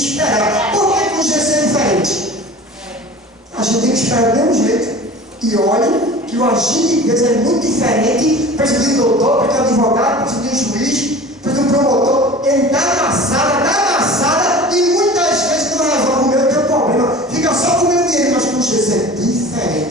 Por que com Jesus é diferente? A gente tem que esperar do mesmo jeito. E olhe que o agir de Deus é muito diferente. Precisa de um doutor, precisa de um advogado, precisa de um juiz, precisa de um promotor. Ele dá amassada, e muitas vezes não resolve o meu teu problema. Fica só com o meu dinheiro, mas com Jesus é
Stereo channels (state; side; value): normal; both; correlation 0.39